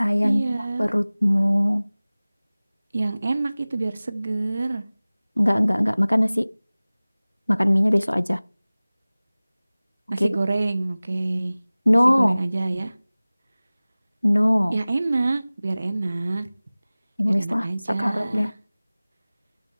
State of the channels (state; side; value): inverted; both; correlation -0.99